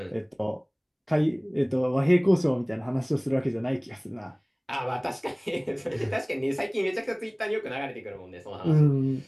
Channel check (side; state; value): both; identical; correlation 1.00